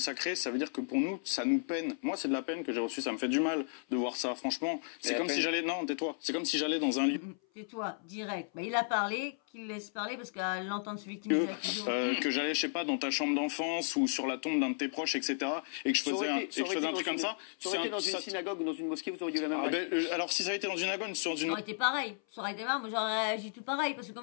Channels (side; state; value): right; silent; 55 dB below the other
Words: ça veut dire que pour nous, ça nous peine. Moi, c'est de la peine que j'ai reçue, ça me fait du mal de voir ça, franchement. C'est la comme peine. si j'allais... Non, tais-toi. C'est comme si j'allais dans un lieu... Tais-toi, direct. Bah, il a parlé, qu'il laisse parler parce qu'à l'entendre se victimiser. que j'allais, je sais pas, dans ta chambre d'enfance ou sur la tombe d'un de tes proches, etc. Et que je faisais un truc comme ça. Ça aurait été dans une synagogue ou dans une mosquée, vous auriez eu la même Ah, réaction. alors, si ça avait été dans une synagogue, sur Ça une... aurait été pareil. Ça aurait été marrant. Moi, j'aurais réagi tout pareil. Parce que